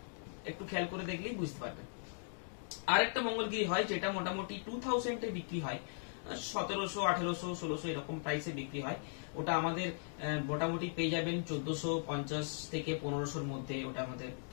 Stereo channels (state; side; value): silent; right; digital silence